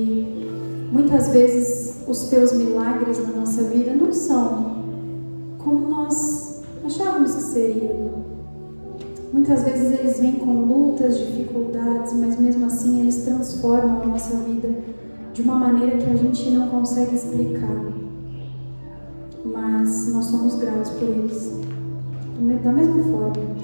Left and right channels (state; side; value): inverted; both; correlation -1.00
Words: muitas vezes os Teus milagres na nossa vida não são como nós achávamos que seriam. Muitas vezes eles vêm com lutas, dificuldades, mas mesmo assim eles transformam a nossa vida de uma maneira que a gente não consegue explicar. Mas nós somos gratos por eles, da mesma forma.